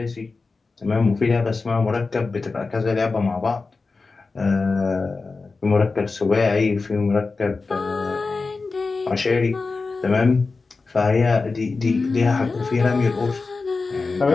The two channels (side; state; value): right; quieter; 4.0 dB